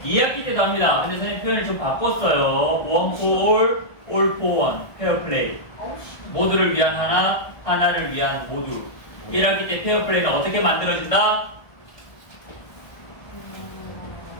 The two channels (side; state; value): right; late; 1.5 ms